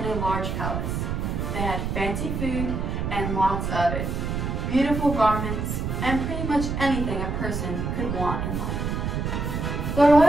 a large palace. They had fancy food and lots of it, beautiful garments, and pretty much anything a person could want in life. The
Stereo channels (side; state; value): right; noise; rumble, 2 dB below the sound